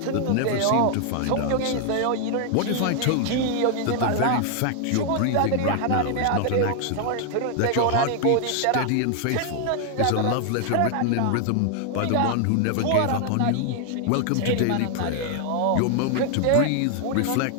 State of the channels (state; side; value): different; both; correlation 0.00